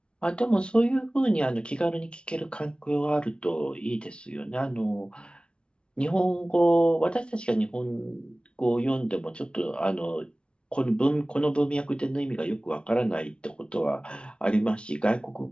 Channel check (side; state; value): right; late; 0.057 ms